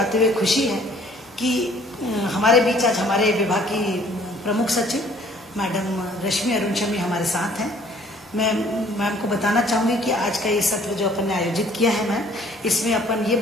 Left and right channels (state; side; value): normal; both; correlation 0.57